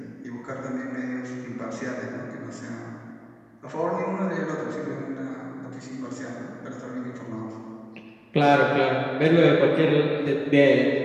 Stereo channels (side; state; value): both; identical; correlation 1.00